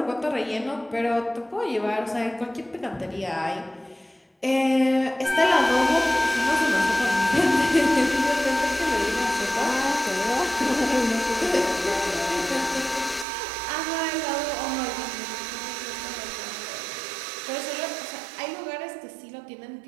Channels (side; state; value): left; drops out; at 13.2 s